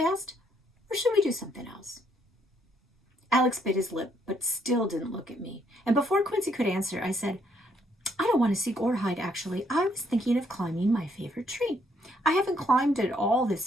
Or should we do something else? Alex bit his lip, but still didn't look at me. And before Quincy could answer, I said, I don't want to seek or hide, actually. I was thinking of climbing my favorite tree. I haven't climbed it all this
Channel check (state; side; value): normal; both; correlation 0.70